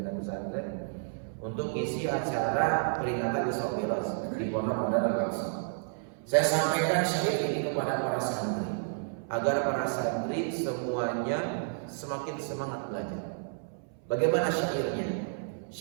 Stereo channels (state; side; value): silent; left; 57 dB below the other